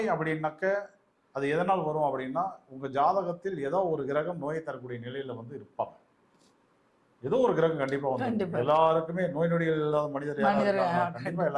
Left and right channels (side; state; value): both; identical; correlation 1.00